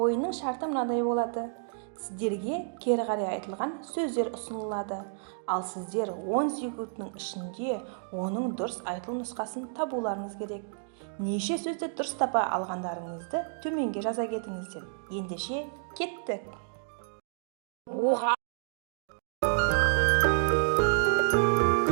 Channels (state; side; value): silent; left; digital silence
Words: шарты мынадай болады. Сіздерге кері қарай айтылған сөздер ұсынылады. Ал сіздер 10 секундтың ішінде оның дұрыс айтылу нұсқасын табуларыңыз керек. Неше сөзді дұрыс тапа алғандарыңызды төменге жаза кетіңіздер. Ендеше кеттік. Оға.